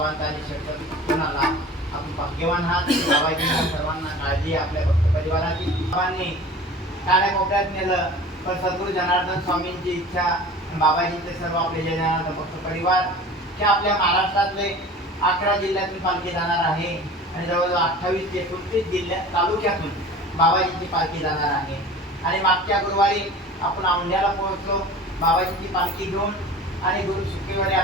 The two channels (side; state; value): both; normal; correlation 0.40